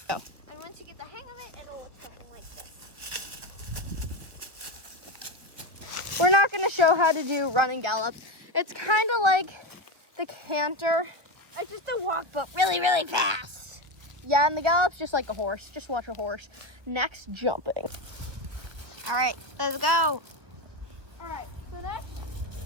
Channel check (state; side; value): late; left; 1.2 ms